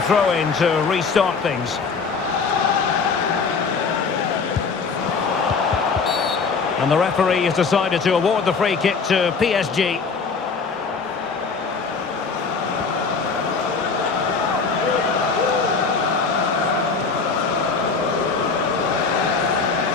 to restart things. And the referee has decided to award the free kick to PSG.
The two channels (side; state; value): right; quieter; 4.9 dB